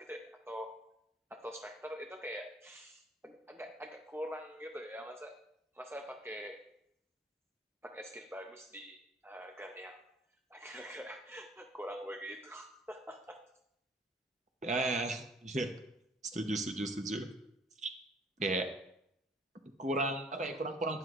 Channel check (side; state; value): both; normal; correlation 0.56